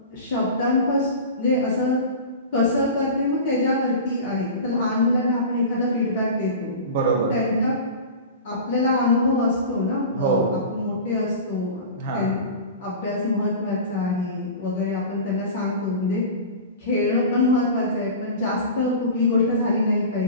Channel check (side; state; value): both; inverted; correlation -0.33